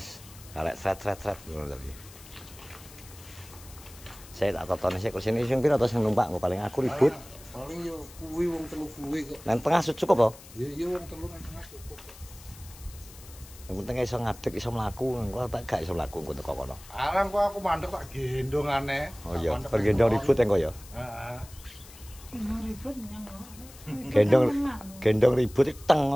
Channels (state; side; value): noise; left; hiss, 19 dB below the sound